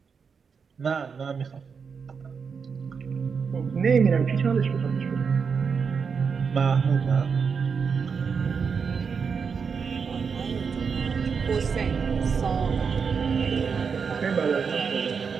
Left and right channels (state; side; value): quieter; left; 5.9 dB